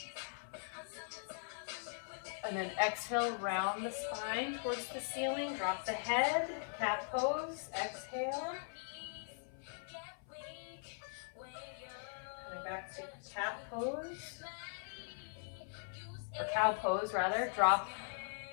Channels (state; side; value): silent; right; 51 dB below the other